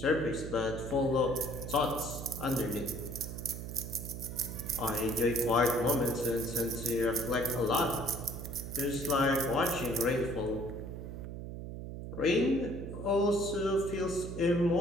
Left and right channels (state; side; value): noise; right; hum, 8 dB below the sound